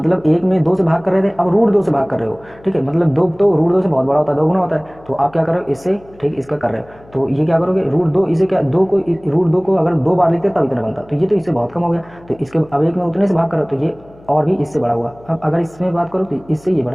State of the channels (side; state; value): left; noise; hum, 25 dB below the sound